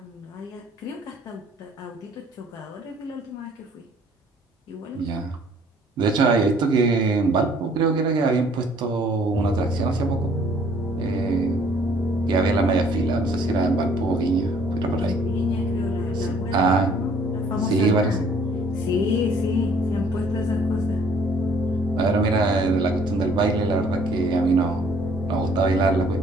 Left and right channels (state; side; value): normal; both; correlation 0.59